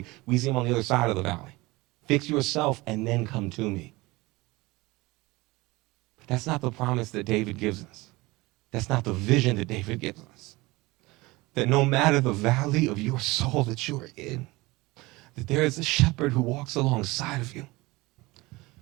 We see him on the other side of the valley. Fix yourself and then come to me. But that's not the promise that David gives us. That's not the vision that David gives us. That no matter the valley of your soul that you are in, that there is a shepherd who walks alongside of you.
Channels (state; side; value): quieter; left; 21.8 dB